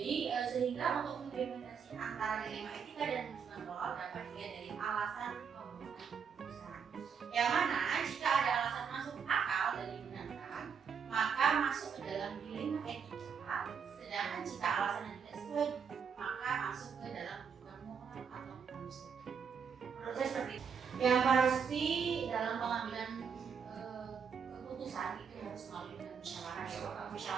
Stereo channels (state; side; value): quieter; left; 6.7 dB